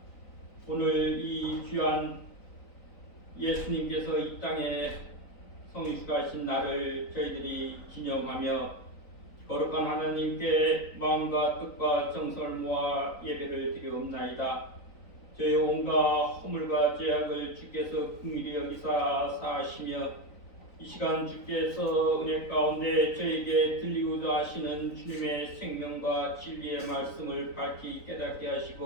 오늘 이 귀한 예수님께서 이 땅에 성육신하신 날을 저희들이 기념하며 거룩한 하나님께 마음과 뜻과 정성을 모아 예배를 드리옵나이다. 저희 온갖 허물과 죄악을 주께서 긍휼히 여기사 사하시며 이 시간 주께서 은혜 가운데 저에게 들리고자 하시는 주님의 생명과 진리의 말씀을 밝히 깨닫게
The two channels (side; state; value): right; late; 3.9 ms